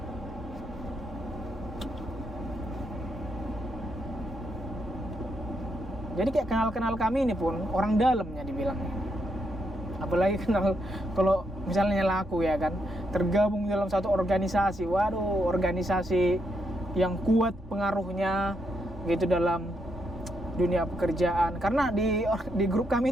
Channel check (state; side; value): normal; both; correlation 0.79